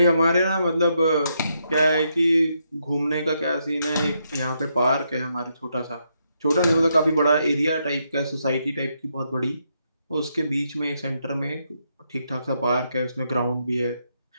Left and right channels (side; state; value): both; inverted; correlation -0.79